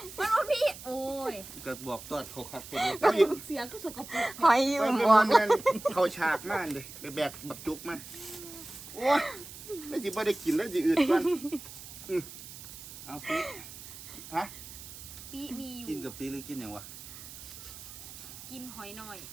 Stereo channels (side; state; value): right; noise; hiss, 14 dB below the sound